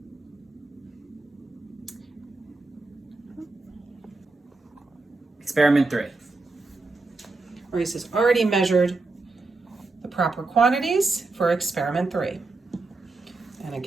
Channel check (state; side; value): quieter; left; 3.5 dB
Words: Experiment 3. Maurice has already measured the proper quantities for experiment 3. And